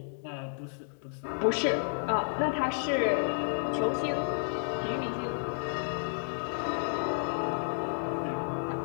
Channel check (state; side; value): silent; right; digital silence